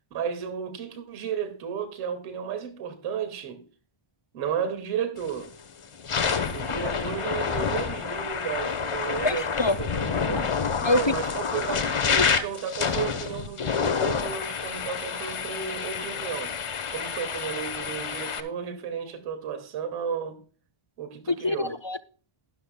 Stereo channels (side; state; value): right; late; 1.4 ms